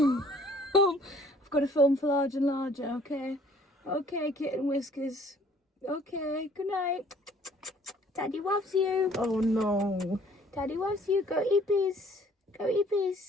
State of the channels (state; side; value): normal; both; correlation 0.57